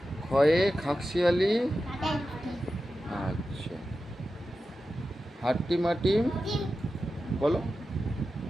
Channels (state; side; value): normal; both; correlation 0.92